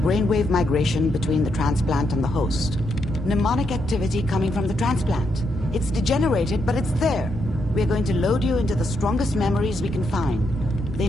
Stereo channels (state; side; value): normal; both; correlation 0.79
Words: migration between the transplant and the host. Mnemonic activity coming from the transplant. It's degenerated, but it's there. We're going to load you into the strongest memories we can find. They